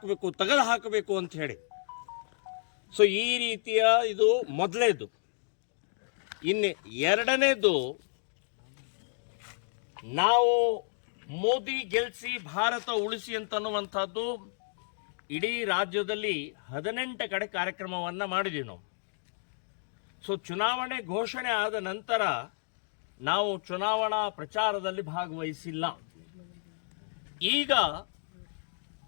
ತೆಗೆದು ಹಾಕಬೇಕು ಅಂತ ಹೇಳಿ. ಸೊ ಈ ರೀತಿಯ ಇದು ಮೊದಲೇದು. ಇನ್ನು 2ನೇದು, ನಾವು ಮೋದಿ ಗೆಲ್ಲಿಸಿ ಭಾರತ ಉಳಿಸಿ ಅಂತನ್ನುವಂಥದ್ದು ಇಡೀ ರಾಜ್ಯದಲ್ಲಿ 18 ಕಡೆ ಕಾರ್ಯಕ್ರಮವನ್ನು ಮಾಡಿದ್ದೀವಿ ನಾವು. ಸೊ ಚುನಾವಣೆ ಘೋಷಣೆ ಆದ ನಂತರ ನಾವು ಚುನಾವಣಾ ಪ್ರಚಾರದಲ್ಲಿ ಭಾಗವಹಿಸಿಲ್ಲ. ಈಗ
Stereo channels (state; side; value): silent; right; digital silence